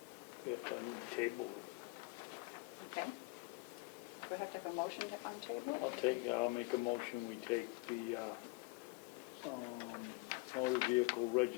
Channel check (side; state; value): right; quieter; 25.8 dB